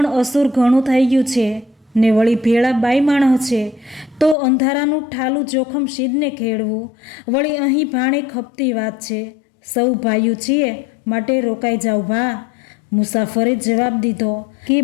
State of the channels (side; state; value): right; drops out; at 4.4 s